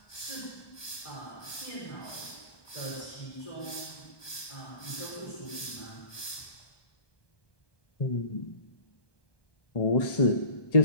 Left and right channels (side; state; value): right; late; 1.1 ms